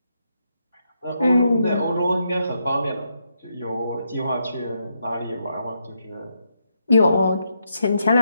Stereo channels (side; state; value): both; inverted; correlation -0.80